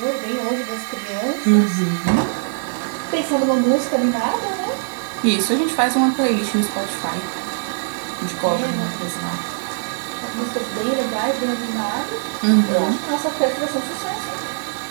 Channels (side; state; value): left; silent; 65 dB below the other